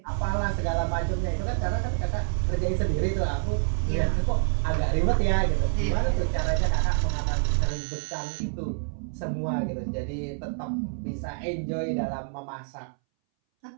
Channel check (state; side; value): silent; left; 60 dB below the other